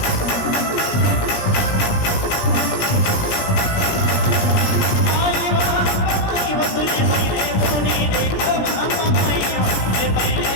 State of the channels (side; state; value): right; late; 17 ms